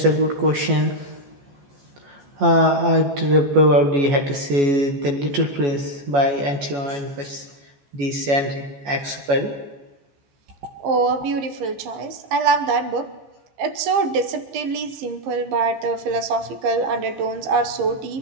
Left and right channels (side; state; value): left; late; 14 ms